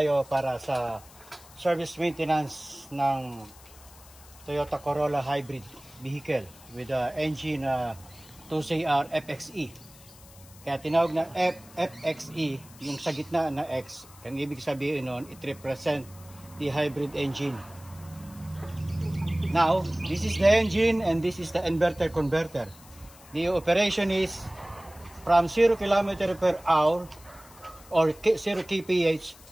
para sa service maintenance ng Toyota Corolla Hybrid vehicle with the engine 2CR FXE. Kaya tinawag na FXE, yung sa gitna na X, ang ibig sabihin nun, it represent the hybrid engine. Now, this is the engine and this is the inverter converter. The operation is from 0 km per hour or 0 kph,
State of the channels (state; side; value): noise; left; hiss, 22 dB below the sound